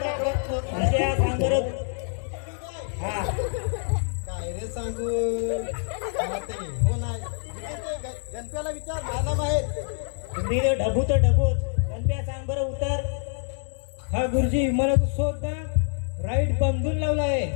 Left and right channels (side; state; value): right; silent; 61 dB below the other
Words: अशा सांग बरं. हा काय रे सांगू मला ते हो नाही गणप्याला विचार मला माहित तुम्ही तर ढबू तर ढबूच गणप्या सांग बरं उत्तर. हा गुरुजी विमानाचा शोध ना राईट बांधून लावला आहे.